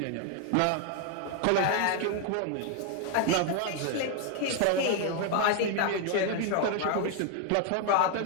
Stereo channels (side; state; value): both; different; correlation 0.00